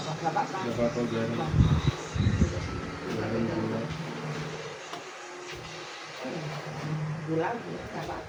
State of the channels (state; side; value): identical; both; correlation 1.00